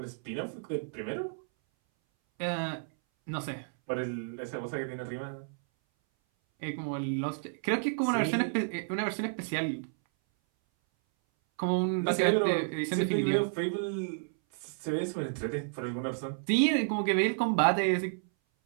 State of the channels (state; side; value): silent; left; 57 dB below the other